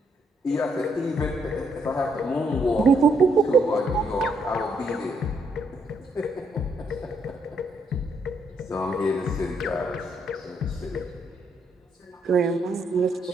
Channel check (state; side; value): normal; both; correlation 0.74